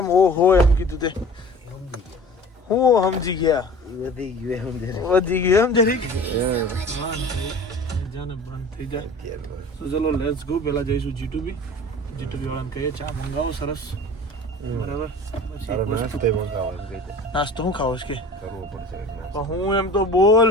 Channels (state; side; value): normal; both; correlation 0.42